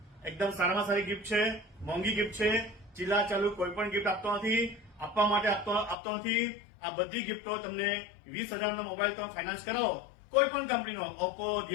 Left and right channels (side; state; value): right; drops out; at 6.0 s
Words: એકદમ સારામાં સારી ગિફ્ટ છે, મોંઘી ગિફ્ટ છે. ચીલા ચાલુ કોઈ પણ ગિફ્ટ આપતો નથી, આપવા માટે આપતો નથી. આ બધી ગિફ્ટો તમને 20,000 નો મોબાઈલ તમે ફાઇનાન્સ કરાવો કોઈ પણ કંપનીનો, ઓપ્પો,